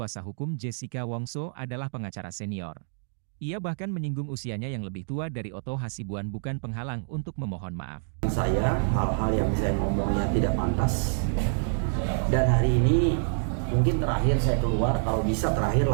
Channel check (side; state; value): left; silent; digital silence